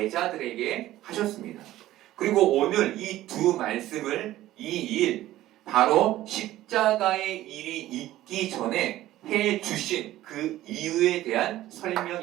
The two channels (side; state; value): left; quieter; 14.8 dB